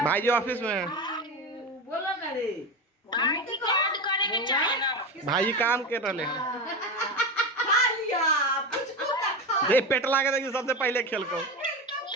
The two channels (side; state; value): both; normal; correlation 0.21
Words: भाई जी ऑफिस में है। बोलो ना रे भाई जी काम कर रहे हैं। खा लिया पुचकू का खा ये पेटला के देखिए सबसे पहले खेल को।